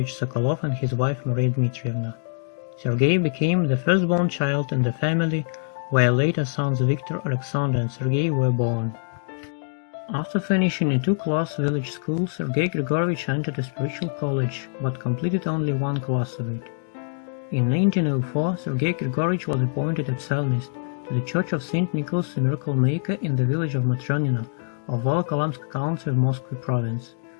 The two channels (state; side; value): silent; right; digital silence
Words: Sokolov and his wife Maria Dmitrievna. Sergei became the firstborn child in the family, where later sons Victor, Alexander and Sergei were born. After finishing a two-class village school, Sergei Grigorievich entered a spiritual college, but completed only one class of it. In 1904, Sergei Grigorievich was appointed a psalmist to the Church of St. Nicholas the Miracle Maker in the village of Matronino of Volokholamsk County of Moscow Province.